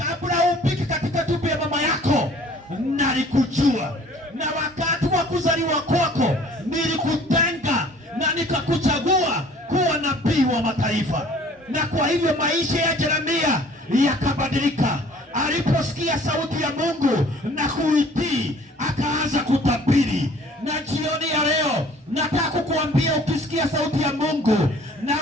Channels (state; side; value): normal; both; correlation 0.53